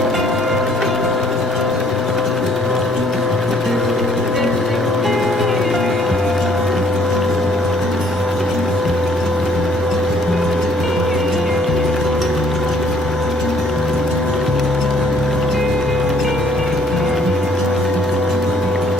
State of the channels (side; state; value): both; normal; correlation 0.63